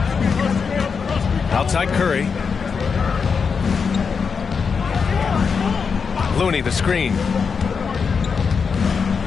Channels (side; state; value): right; quieter; 5.7 dB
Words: Outside Curry. Looney the screen.